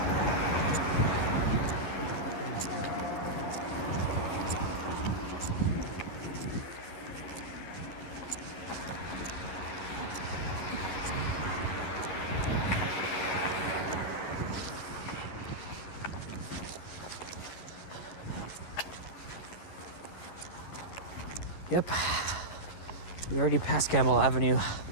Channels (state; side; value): late; right; 11 ms